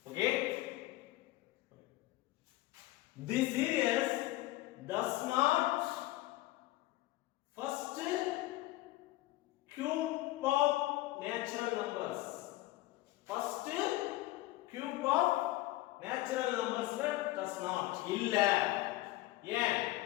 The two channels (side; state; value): right; quieter; 17.7 dB